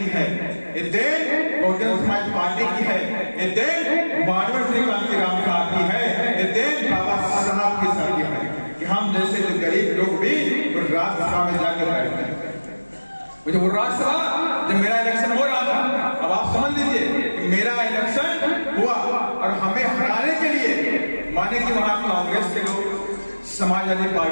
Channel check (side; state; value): both; inverted; correlation -1.00